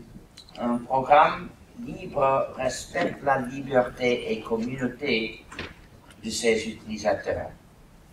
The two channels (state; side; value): identical; both; correlation 1.00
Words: Un programme libre respecte la liberté et communauté de ses utilisateurs.